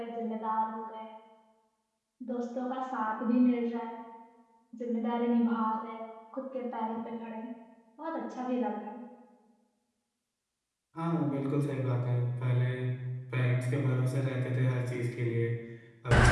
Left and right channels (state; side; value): identical; both; correlation 1.00